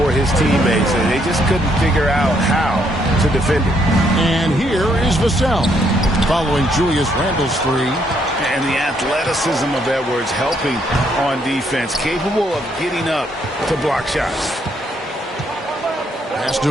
his teammates, and they just couldn't figure out how to defend it. And here is Vassell. following Julius Randle's three. And the athleticism of Edwards helping on defense, capable of getting up to block shots. Pass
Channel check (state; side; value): normal; both; correlation 0.72